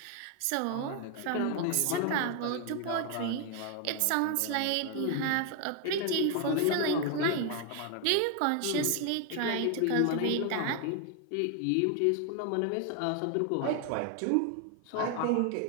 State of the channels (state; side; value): different; both; correlation 0.01